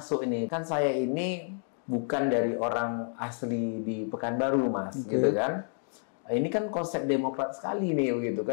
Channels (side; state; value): right; silent; 58 dB below the other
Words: ini. Kan saya ini bukan dari orang asli di Pekanbaru Mas, gitu kan. Ini kan konsep Demokrat sekali nih, gitu